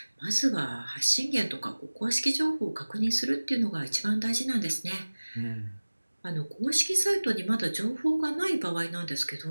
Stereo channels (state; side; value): inverted; both; correlation -1.00